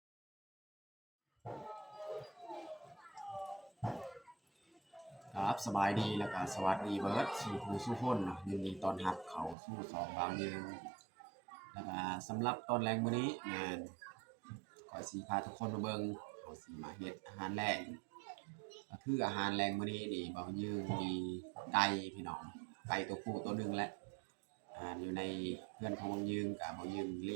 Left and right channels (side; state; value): left; drops out; at 9.6 s